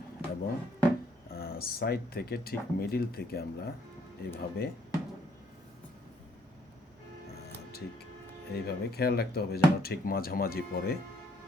এবং সাইড থেকে ঠিক মিডিল থেকে আমরা এইভাবে ঠিক এইভাবে খেয়াল রাখতে হবে যেন ঠিক মাঝামাঝি পড়ে।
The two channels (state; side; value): normal; both; correlation 0.67